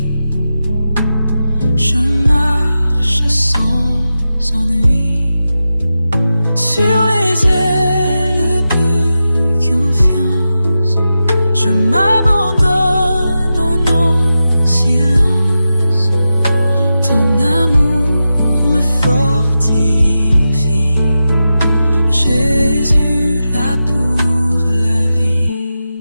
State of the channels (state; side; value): inverted; both; correlation -0.91